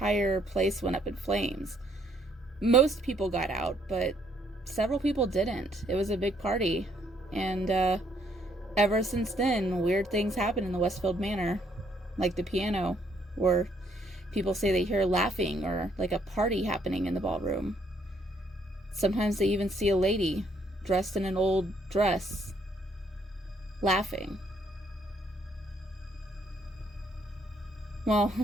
place went up in flames. Most people got out, but several people didn't. It was a big party. And ever since then, weird things happen in the Westfield Manor. Like the piano, where people say they hear laughing or like a party happening in the ballroom. Sometimes they even see a lady dressed in an old dress laughing." Well,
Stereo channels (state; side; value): normal; both; correlation 0.68